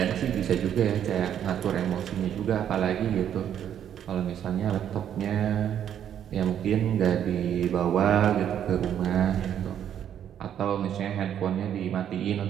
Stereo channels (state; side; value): quieter; left; 9.7 dB